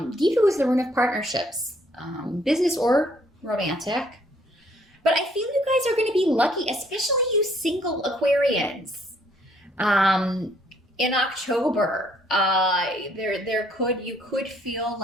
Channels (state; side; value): normal; both; correlation 0.65